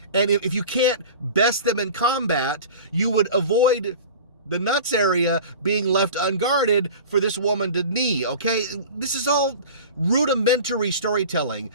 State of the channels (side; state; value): both; inverted; correlation -0.37